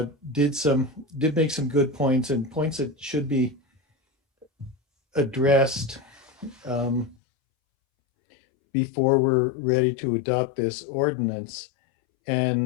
did make some good points, and points that should be addressed before we're ready to adopt this ordinance.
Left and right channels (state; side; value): drops out; right; at 7.2 s